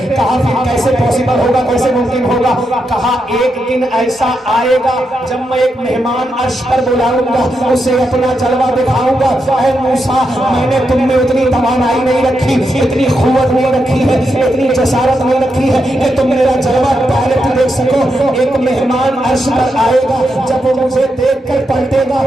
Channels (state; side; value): normal; both; correlation 0.84